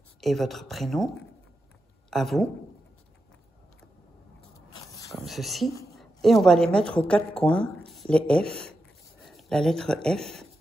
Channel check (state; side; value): normal; both; correlation 0.88